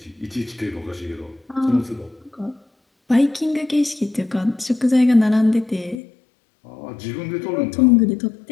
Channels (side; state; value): right; drops out; at 6.0 s